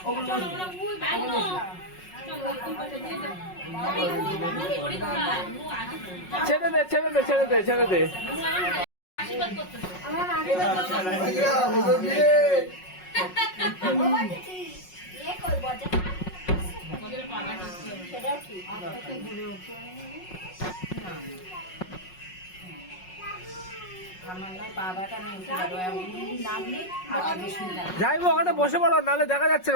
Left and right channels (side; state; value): right; late; 5.5 ms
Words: ছেড়ে দে ছেড়ে দে ছেড়ে দে ছেড়ে দে। যাইবো ওখানে বসে পড়ো, নাহলে দেখা যাচ্ছে